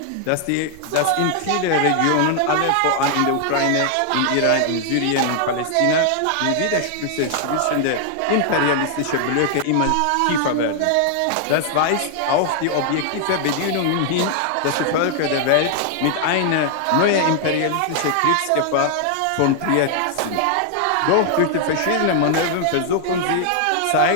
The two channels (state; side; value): different; both; correlation 0.00